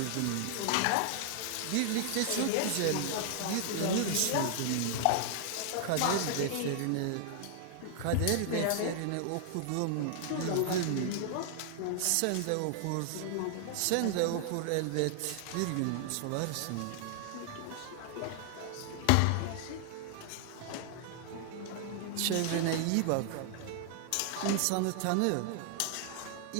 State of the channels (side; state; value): both; different; correlation 0.00